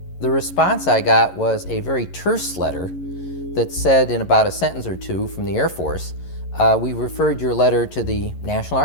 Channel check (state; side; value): late; right; 11 ms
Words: the response I got was a very terse letter that said in about a sentence or two from the Air Force, we referred your letter to the National